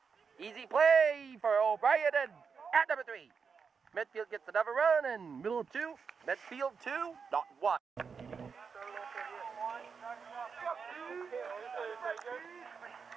Easy play for O'Brien, and at number 3. Medfield gets another run, and middle of 2. Medfield 2, not 1.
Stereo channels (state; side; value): quieter; left; 5.8 dB